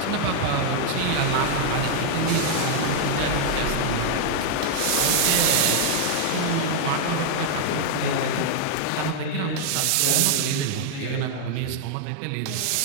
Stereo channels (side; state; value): both; different; correlation 0.00